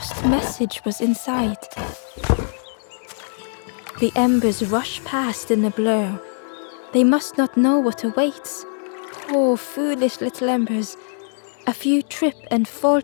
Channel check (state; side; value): silent; right; 64 dB below the other